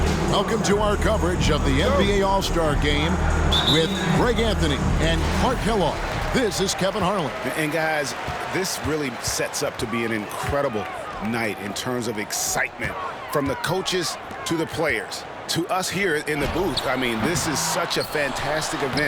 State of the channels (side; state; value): both; identical; correlation 1.00